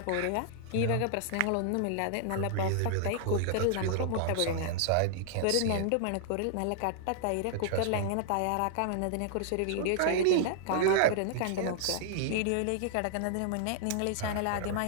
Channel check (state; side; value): different; both; correlation -0.01